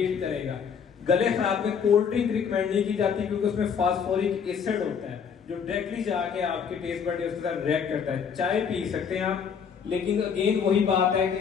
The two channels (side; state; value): right; quieter; 6.9 dB